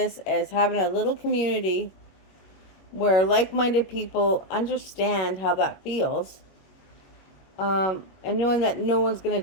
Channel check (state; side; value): late; right; 21 ms